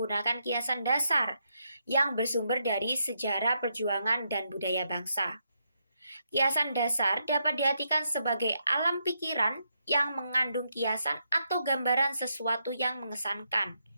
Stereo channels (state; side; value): inverted; both; correlation -0.80